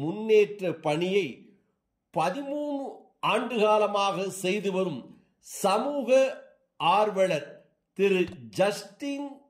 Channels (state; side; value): identical; both; correlation 1.00